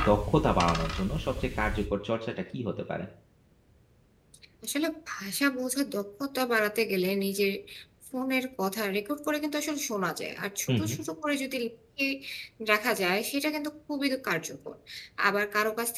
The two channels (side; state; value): both; identical; correlation 1.00